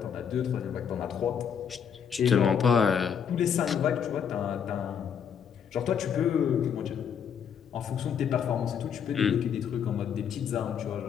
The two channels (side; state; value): right; quieter; 7.7 dB